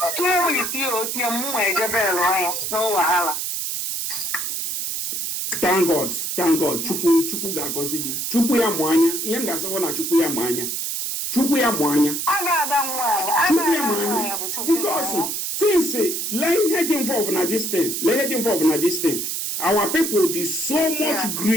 weeks ihe otie mmụọ ejebelu anya n'ụwahala. Thank God. Chukwu ga-agọzi gị. Chukwu ya mụ anya. Ihe m ga-asịkwa na Chukwu ya mụ anya. Chukwu ya mụ anya. A ga-ada nwaanyị. Chukwu ya mụ anya. Because things lee ihe dị involved na this thing. Our people dị so much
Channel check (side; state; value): right; noise; hiss, 2 dB below the sound